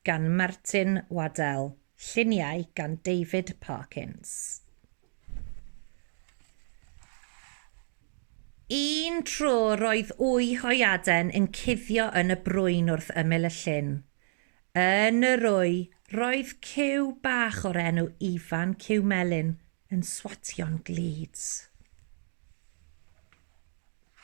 gan Martin Waddell, Lluniau gan David Parkins. Un tro roedd wy hoiaden yn cuddio yn y brwyn wrth ymyl y llyn. Yn yr wy, roedd cyw bach o'r enw Ifan Cyw Melyn yn swatio'n glids.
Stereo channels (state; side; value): silent; left; digital silence